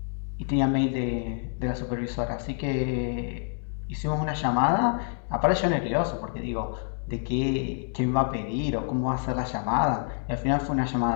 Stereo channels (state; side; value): silent; right; 60 dB below the other